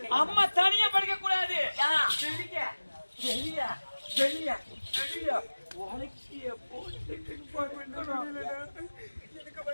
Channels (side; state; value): both; inverted; correlation -1.00